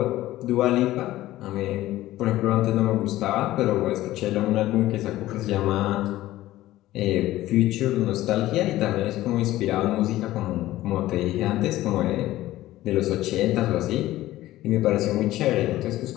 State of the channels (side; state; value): right; quieter; 15.6 dB